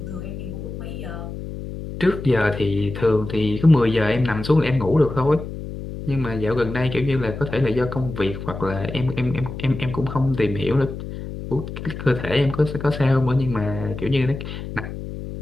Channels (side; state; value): left; noise; hum, 9 dB below the sound